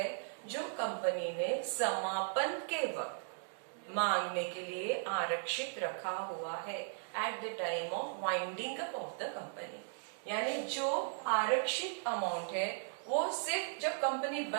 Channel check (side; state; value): left; silent; digital silence